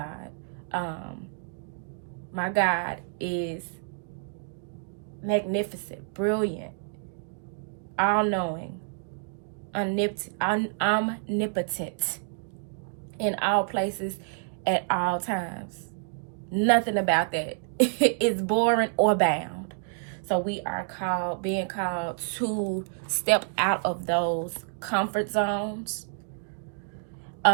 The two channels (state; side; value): silent; left; digital silence